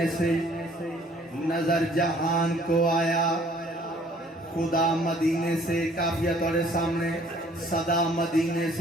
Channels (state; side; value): normal; both; correlation 0.58